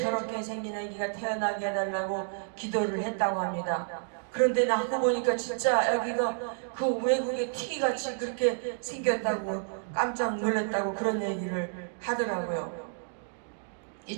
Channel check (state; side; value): silent; left; digital silence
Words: 생긴 아기가 태어나게 해달라고 기도를 했다고 합니다. 그런데 낳고 보니까 진짜 아기가 그 외국의 티기같이 그렇게 생겼다고 깜짝 놀랐다고 그런 얘기를 하더라고요.